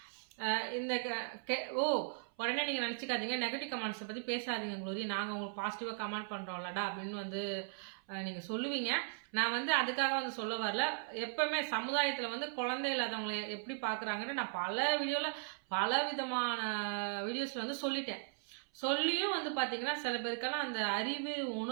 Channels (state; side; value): silent; left; 53 dB below the other